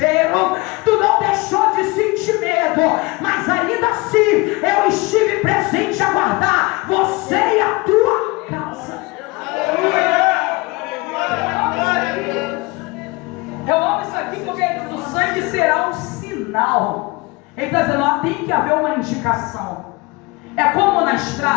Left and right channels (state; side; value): quieter; right; 24.7 dB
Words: tu não deixou de sentir medo, mas ainda assim eu estive presente a guardar você e a tua casa. Eu amo isso aqui porque o sangue será um sinal. Ele está dizendo, ó, tem que haver uma indicação. É como na